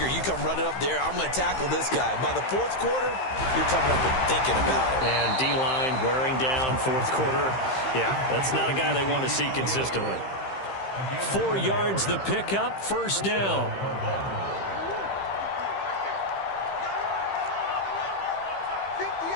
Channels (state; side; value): late; right; 15 ms